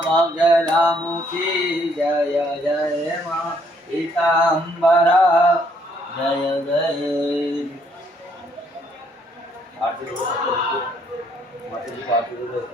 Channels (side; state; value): both; normal; correlation 0.68